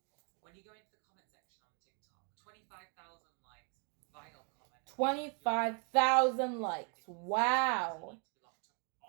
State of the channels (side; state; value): left; quieter; 38.0 dB